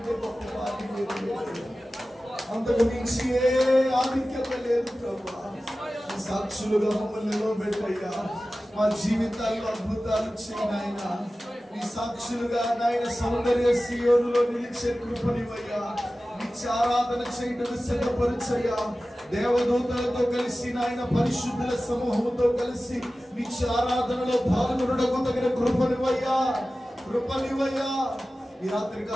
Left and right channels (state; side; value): normal; both; correlation 0.96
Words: గొప్ప భాగ్యం లేదు. అంతకు మించి ఏ ఆధిక్యత లేదు ప్రభువా. సాక్షులుగా మమ్మల్ని నిలబెట్టయ్యా. మా జీవితాల్లో అద్భుతాలు చేయనాయన. నీ సాక్షులుగా నాయన సౌందర్య సియోనులో నిలిచే కృపనివయ్యా. నిత్య ఆరాధన చేయడం సిద్ధపరచయ్యా. దేవదూతలతో కలిసి నాయన పరిశుద్ధుల సమూహంతో కలిసి నిత్య ఆరాధనలో పాల్గొనడం తగిన కృపనివయ్యా. ఈ